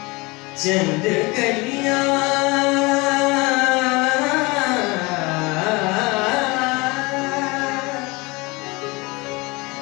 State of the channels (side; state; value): right; quieter; 25.1 dB